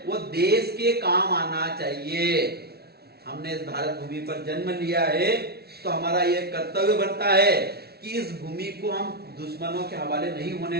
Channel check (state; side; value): late; left; 0.46 ms